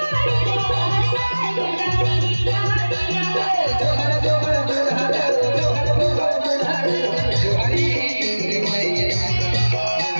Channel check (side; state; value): both; inverted; correlation -1.00